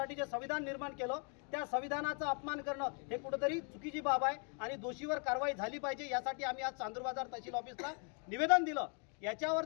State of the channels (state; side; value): quieter; right; 39.2 dB